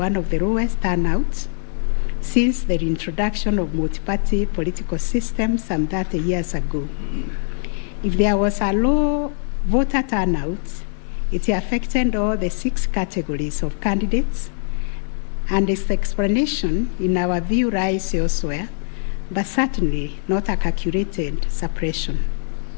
of the lowest turnouts since the introduction of multi-party political system some 30 years ago. If there was a low voter turnout, it affected all the 6 categories of candidates, and its explanation, in our view, lies elsewhere, but certainly not a calculated suppression.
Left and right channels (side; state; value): right; silent; digital silence